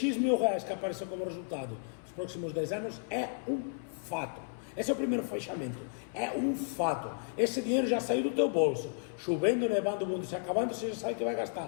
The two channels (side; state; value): right; silent; 56 dB below the other